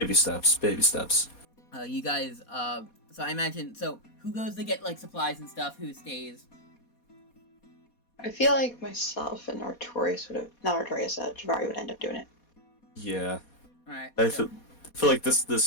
steps. You guys, so I imagine, who goes to get, like, supplies and stuff, who stays? I feel like myself and Artorias Givarri would end up doing it. Yeah. Alright. I feel like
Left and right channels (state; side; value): late; right; 4.2 ms